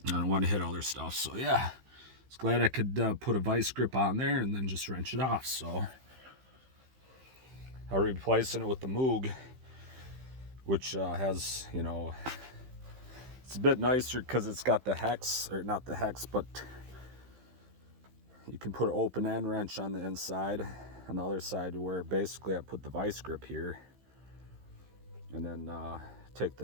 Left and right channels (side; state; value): left; late; 15 ms